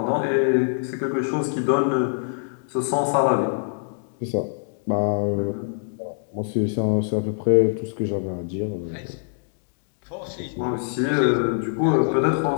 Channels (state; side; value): silent; right; digital silence